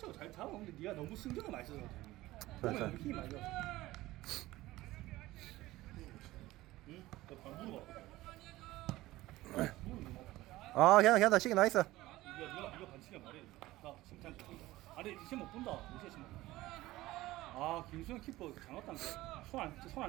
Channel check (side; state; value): left; quieter; 17.5 dB